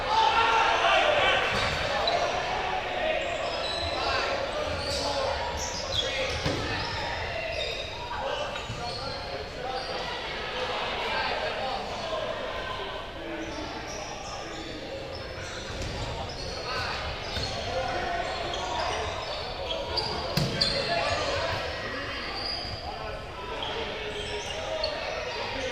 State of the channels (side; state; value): both; identical; correlation 1.00